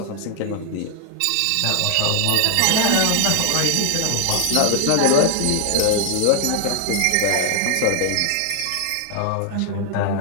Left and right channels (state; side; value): different; both; correlation 0.00